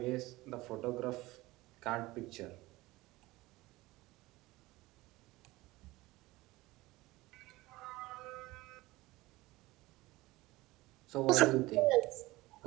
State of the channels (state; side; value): quieter; left; 19.7 dB